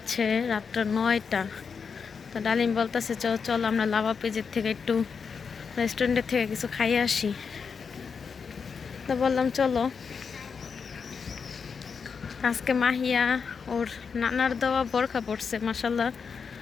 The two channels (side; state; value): right; quieter; 5.9 dB